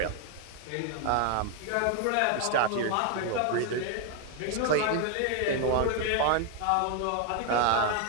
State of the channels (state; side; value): different; both; correlation 0.01